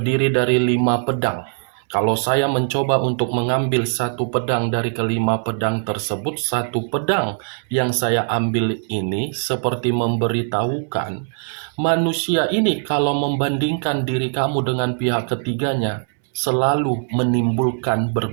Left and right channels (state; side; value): silent; left; 65 dB below the other